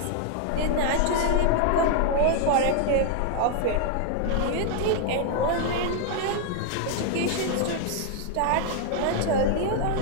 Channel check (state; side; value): different; both; correlation 0.00